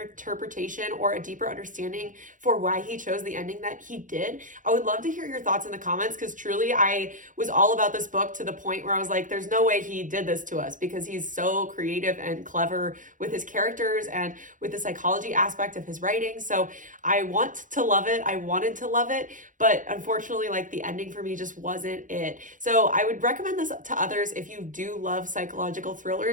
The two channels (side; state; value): left; late; 0.38 ms